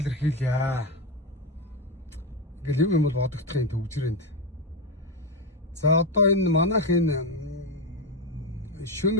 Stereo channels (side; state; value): both; normal; correlation 0.09